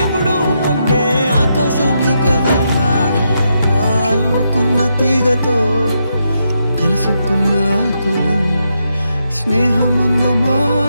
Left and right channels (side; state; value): both; inverted; correlation -0.82